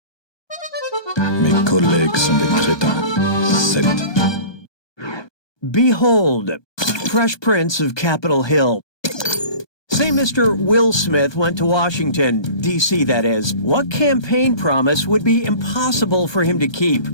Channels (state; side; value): late; right; 1.2 ms